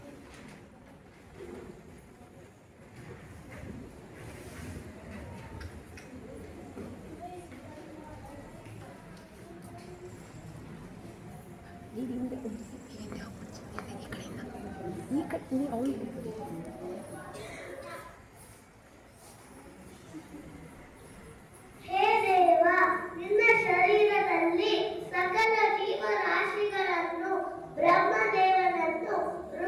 ಹೇ ದೇವ, ನಿನ್ನ ಶರೀರದಲ್ಲಿ ಸಕಲ ಜೀವರಾಶಿಗಳನ್ನು, ಬ್ರಹ್ಮದೇವನನ್ನು,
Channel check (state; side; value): identical; both; correlation 1.00